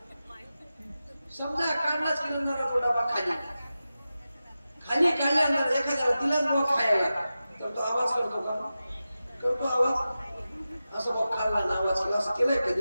समजा काढलाच की नंतर तो डबा खाली खाली काढल्यानंतर एखाद्याला दिलाच बॉ खायला तर तो आवाज करतो का? करतो आवाज. असं बॉ खाल्ला ना आवाज केला, असं केलंय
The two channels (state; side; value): inverted; both; correlation -0.93